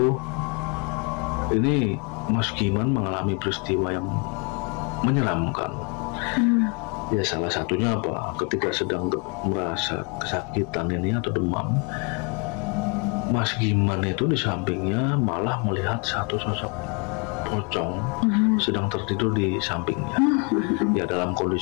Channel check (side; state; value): right; quieter; 33.2 dB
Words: ini Mas Giman mengalami peristiwa yang menyeramkan. Ya, salah satunya apa? Ketika sedang merasa kesakitan ini atau demam, Mas Giman itu di sampingnya malah melihat satu sosok pocong sedang tertidur di sampingnya. Ya, dalam